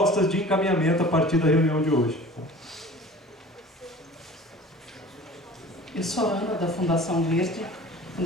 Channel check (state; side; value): normal; both; correlation 0.42